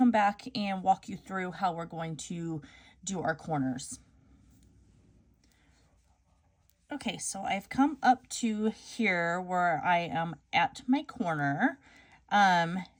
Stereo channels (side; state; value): both; identical; correlation 1.00